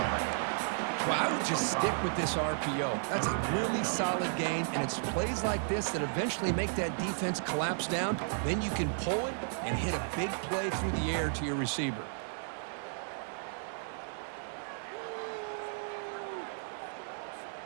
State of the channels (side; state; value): left; silent; digital silence